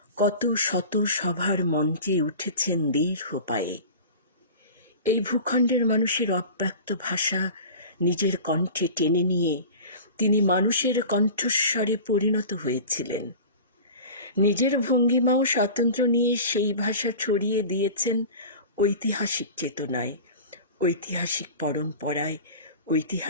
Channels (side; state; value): both; inverted; correlation -0.36